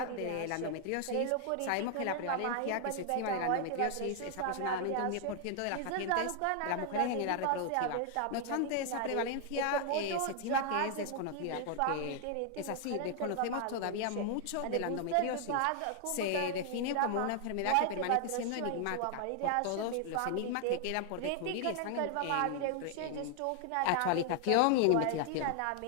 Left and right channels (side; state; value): both; different; correlation 0.00